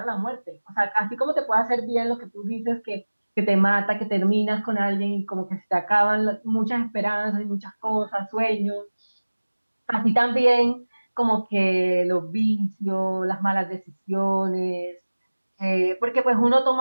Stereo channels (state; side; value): inverted; both; correlation -1.00